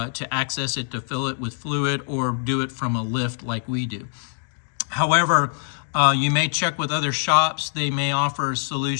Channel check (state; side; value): silent; right; 62 dB below the other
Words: access it, to fill it with fluid, or do it from a lift like we do. However, you may check with other shops. They may offer